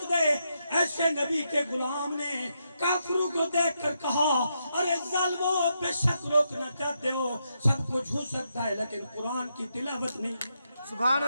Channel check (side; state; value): both; inverted; correlation -0.82